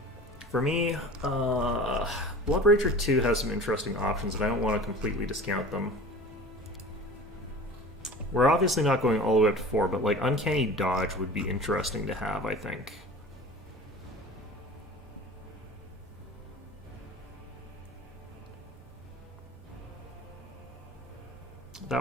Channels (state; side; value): normal; both; correlation 0.39